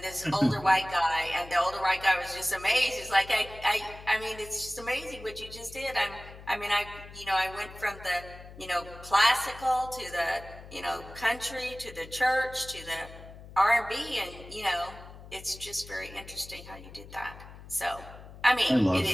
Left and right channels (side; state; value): left; noise; hum, 16 dB below the sound